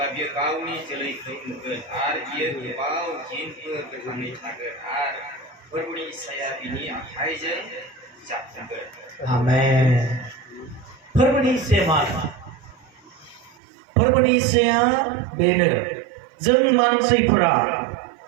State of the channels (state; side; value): drops out; left; at 13.6 s